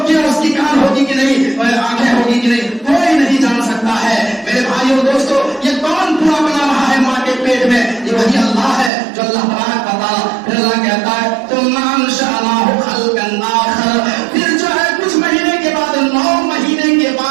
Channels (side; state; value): left; drops out; at 8.9 s